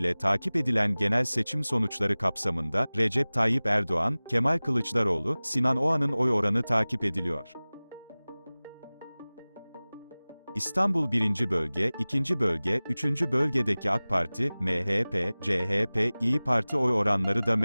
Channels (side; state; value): both; inverted; correlation -0.99